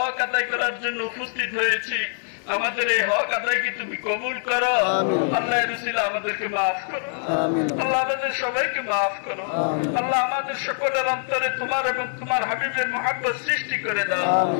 আদায় করার জন্য উপস্থিত হয়েছি। আমাদের এই হক আদায়কে তুমি কবুল করো। আল্লাহ রসুল আমাদেরকে মাফ করো। আল্লাহ আমাদের সবাইকে মাফ করো। আল্লাহ আমাদের সকলের অন্তরে তোমার এবং তোমার হাবিবের মুহাব্বত সৃষ্টি করে দাও।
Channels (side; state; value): right; silent; digital silence